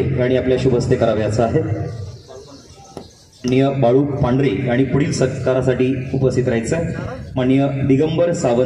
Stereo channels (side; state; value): both; identical; correlation 1.00